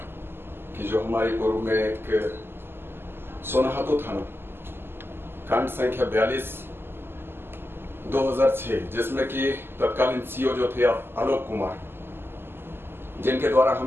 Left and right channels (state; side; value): late; left; 0.11 ms